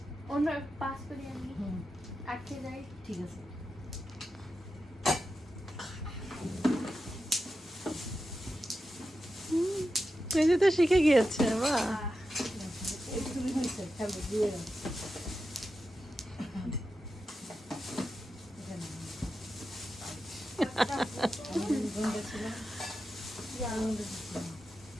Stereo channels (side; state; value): both; normal; correlation 0.90